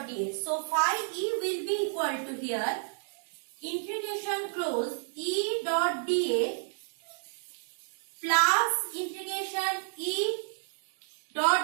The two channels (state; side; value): silent; left; digital silence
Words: dA. So phi E will be equal to here integration close E dot dA plus integration E